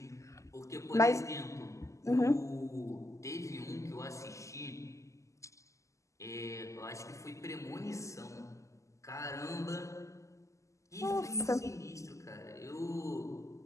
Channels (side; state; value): right; late; 0.15 ms